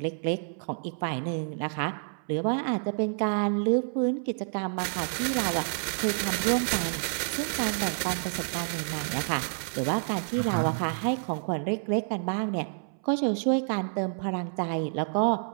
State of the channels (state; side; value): silent; left; 59 dB below the other